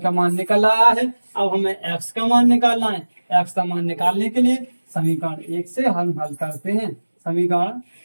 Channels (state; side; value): inverted; both; correlation -1.00